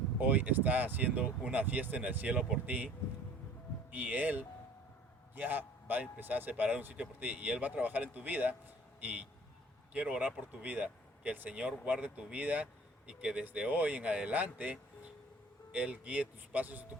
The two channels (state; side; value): normal; both; correlation 0.50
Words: hoy está haciendo una fiesta en el cielo por ti y Él ya va a empezar a separar un sitio por ti y Él va a trabajar en tu vida y quiero orar por tu vida, que el Señor guarde tu vida y que desde hoy en adelante Él guíe tus pasos y tus